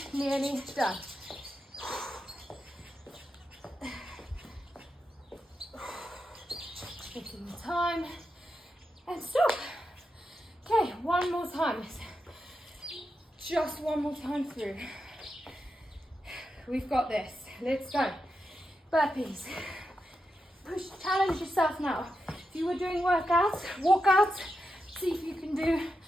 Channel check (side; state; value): both; normal; correlation 0.87